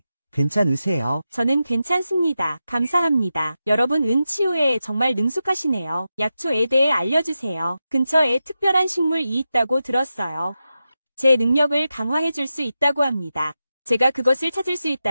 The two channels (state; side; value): inverted; both; correlation -0.91